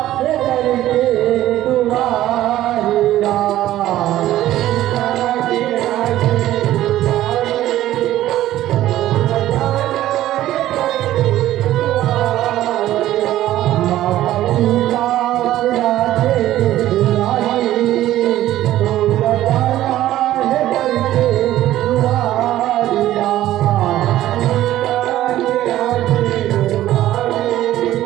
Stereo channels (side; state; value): left; quieter; 14.0 dB